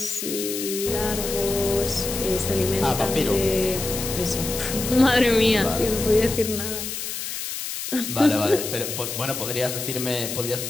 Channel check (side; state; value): left; noise; hiss, 5 dB below the sound